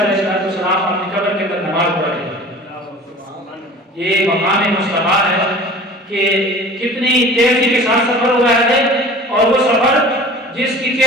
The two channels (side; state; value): both; normal; correlation 0.42